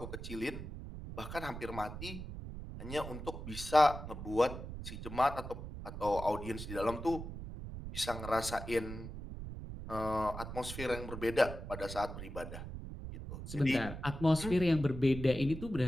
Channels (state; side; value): noise; right; rumble, 9 dB below the sound